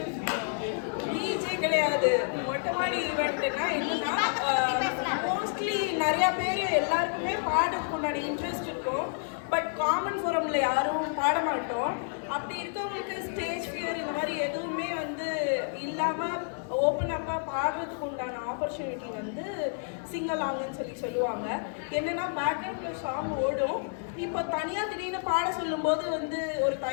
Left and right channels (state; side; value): silent; right; 58 dB below the other